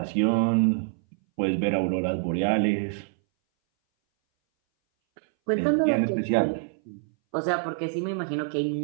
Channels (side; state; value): left; silent; 60 dB below the other